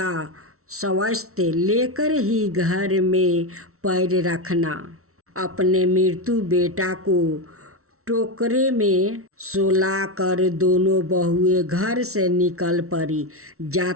स्वस्थ लेकर ही घर में पैर रखना। अपने मृत्यु बेटा को टोकरे में सुलाकर दोनों बहुएं घर से निकल पड़ी।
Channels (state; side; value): late; left; 0.63 ms